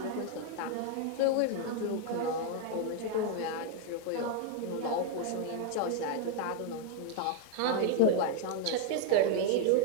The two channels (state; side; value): different; both; correlation 0.00